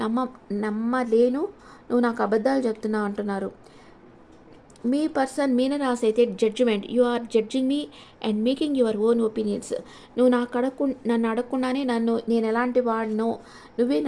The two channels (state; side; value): identical; both; correlation 1.00